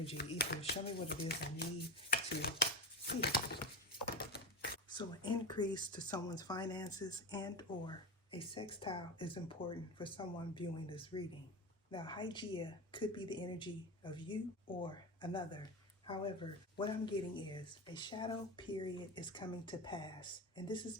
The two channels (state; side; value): normal; both; correlation 0.23